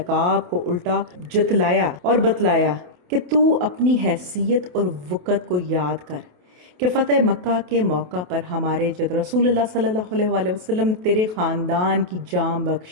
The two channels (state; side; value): late; left; 28 ms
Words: کو الٹا جتلایا اور بتلایا کہ تو اپنی حیثیت اور وقت کو یاد کر کہ فتح مکہ کے موقع پر ہمارے جد رسول اللہ صلی اللہ علیہ وآلہ وسلم تیرے خاندان کی جان